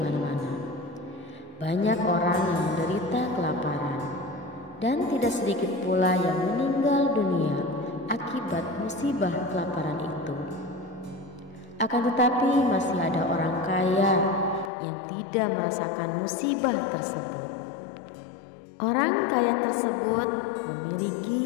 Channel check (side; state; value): right; drops out; at 14.7 s